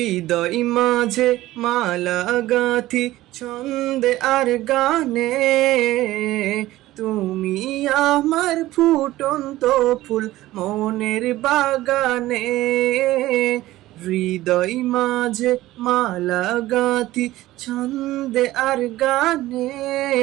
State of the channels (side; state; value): left; quieter; 16.3 dB